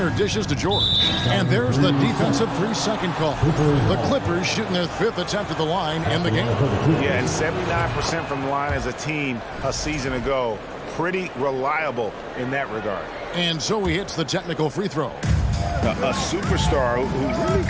dishes to George. And there's the defensive 3-second call. The Clippers shooting their 5th attempt at the line in the game. Yeah, and 79% from the line as a team a season ago. Pretty reliable in that regard. And so he hits the technical free throw. a superstar who really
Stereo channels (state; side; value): identical; both; correlation 1.00